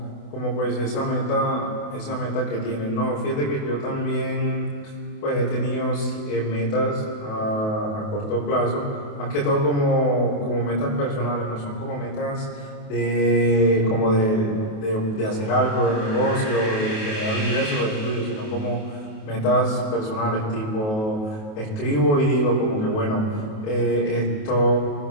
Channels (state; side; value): late; right; 28 ms